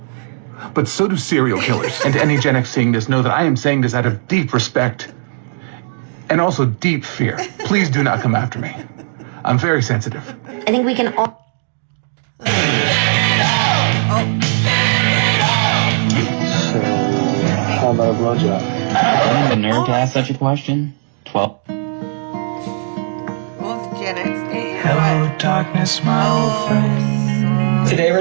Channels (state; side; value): silent; left; digital silence